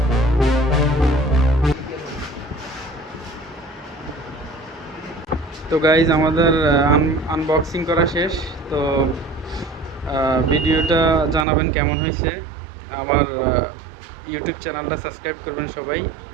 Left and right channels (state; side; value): drops out; left; at 11.5 s